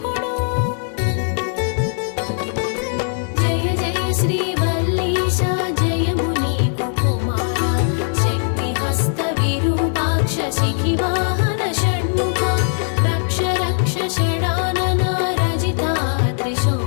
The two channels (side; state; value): right; silent; 66 dB below the other